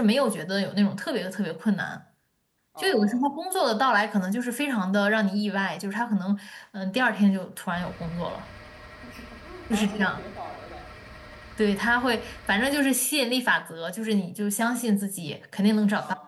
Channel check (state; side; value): identical; both; correlation 1.00